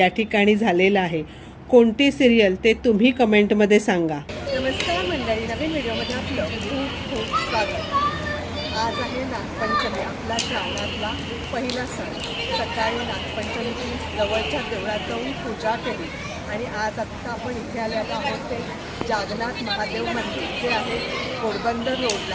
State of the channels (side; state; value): both; identical; correlation 1.00